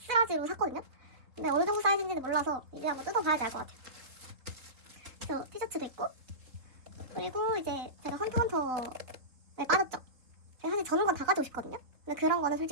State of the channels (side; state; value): left; late; 3.7 ms